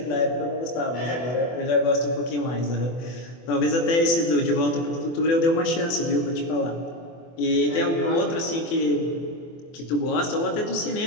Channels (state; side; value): late; right; 24 ms